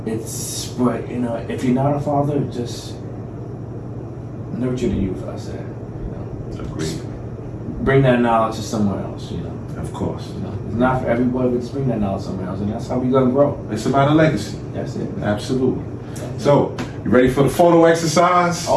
But you know, if you're not a father, just nurture the youth, I said. You know, Agreed. Bring that knowledge to somewhere else, you know. Of course. You know, it's not for everybody, but just bring that knowledge somewhere else, and that's how we gonna grow. It's about a legacy. That's it. Absolutely. So, you ready for the photo exercise?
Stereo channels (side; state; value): both; identical; correlation 1.00